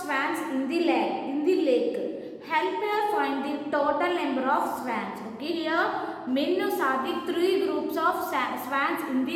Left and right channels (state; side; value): identical; both; correlation 1.00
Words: swans in the lake. Help her find the total number of swans. Okay, here Minu saw the 3 groups of swans in the